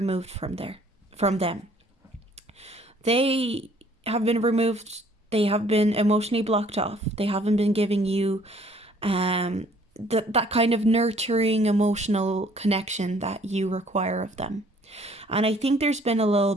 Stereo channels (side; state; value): both; normal; correlation 0.59